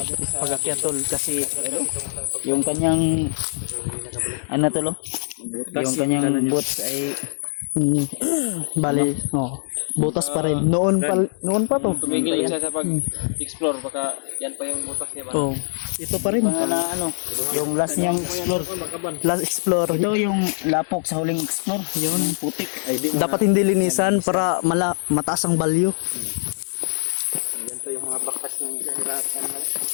to sa Pag-akyat tol kasi yung kanyang ano tol? Yung kanyang boots ay bali, butas pa rin. Noon pa to. tumigil siya sa pag-explore baka yan pa yung butas niya ba? Oh, ito pa rin na ano, yung last niyang explore. Last explore. Ito yung lapok sa huling explore. Yun, putik. Dapat hindi linisan para mataas ang value. Yan to yung mga bakas ng hirapan na.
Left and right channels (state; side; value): silent; right; digital silence